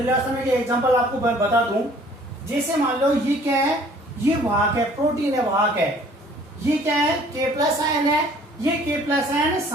में ये एग्जांपल आपको बता दूं, जैसे मान लो ये क्या है, ये वाहक है, प्रोटीन है, वाहक है। ये क्या है, K प्लस आयन है। ये K प्लस आयन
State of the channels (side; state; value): both; normal; correlation 0.55